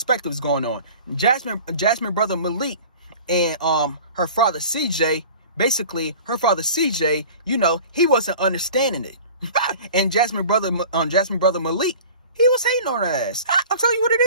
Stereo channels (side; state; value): both; inverted; correlation -0.42